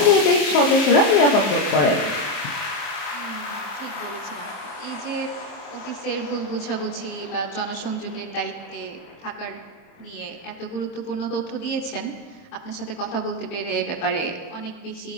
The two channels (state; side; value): late; right; 26 ms